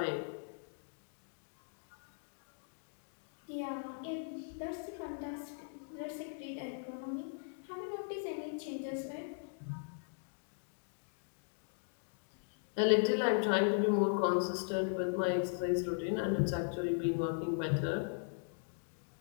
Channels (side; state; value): right; silent; digital silence